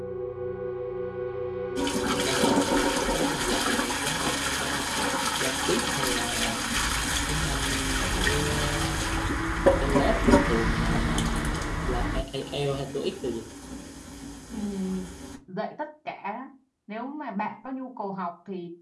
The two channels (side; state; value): both; identical; correlation 1.00